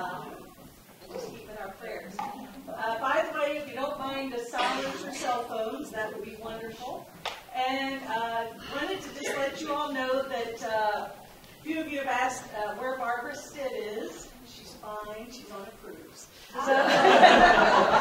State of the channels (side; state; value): both; identical; correlation 1.00